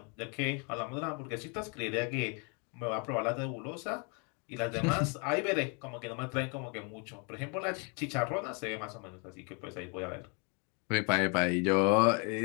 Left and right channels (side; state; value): right; quieter; 35.3 dB